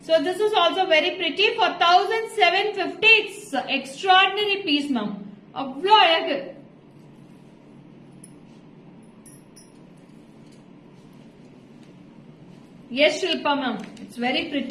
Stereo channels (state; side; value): identical; both; correlation 1.00